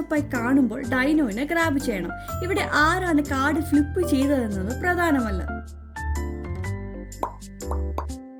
അപ്പായി കാണുമ്പോൾ ഡൈനോനെ ഗ്രാബ് ചെയ്യണം. ഇവിടെ ആരാണ് കാർഡ് ഫ്ലിപ്പ് ചെയ്തതെന്നത് പ്രധാനമല്ല.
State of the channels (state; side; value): identical; both; correlation 1.00